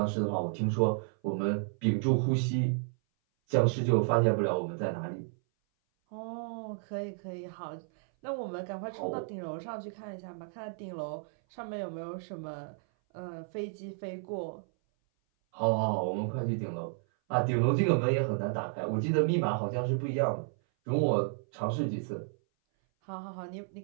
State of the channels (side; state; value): left; silent; 56 dB below the other